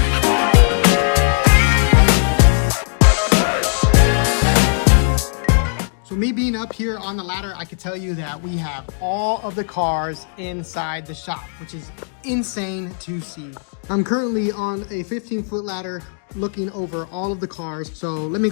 So me being up here on the ladder, I can tell you that we have all of the cars inside the shop, which is insane to see. I'm currently on a 15-foot ladder looking over all of the cars. So let me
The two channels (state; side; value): silent; right; digital silence